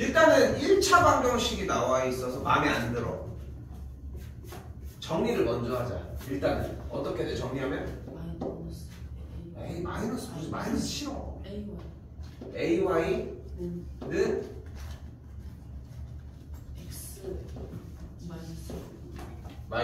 1차 방정식이 나와 있어서 마음에 안 들어. 정리를 먼저 하자. 일단은 어떻게 돼? 정리하면? 에이 마이너스 무슨 마이너스 싫어. AY는 X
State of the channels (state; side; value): identical; both; correlation 1.00